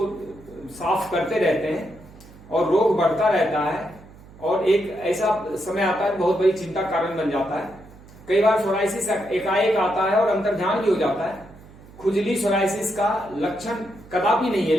साफ करते रहते हैं और रोग बढ़ता रहता है और एक ऐसा समय आता है बहुत बड़ी चिंता कारण बन जाता है। कई बार सोराइसिस एकाएक आता है और अंतर्ध्यान भी हो जाता है। खुजली सोराइसिस का लक्षण कदापि नहीं है,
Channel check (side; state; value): right; noise; hum, 22 dB below the sound